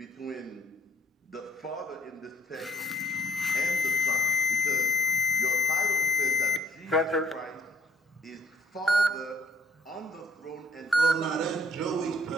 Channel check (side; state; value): both; normal; correlation 0.64